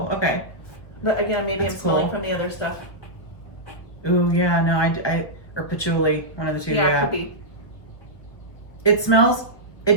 okay. But again, maybe I'm smelling from the other stuff. Ooh, yeah, no, I or patchouli, one of the two. Yeah, it could be.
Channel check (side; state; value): right; late; 1.1 ms